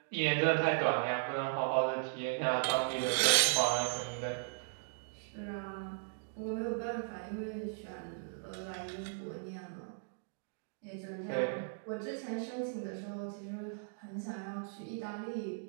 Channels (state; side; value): silent; left; digital silence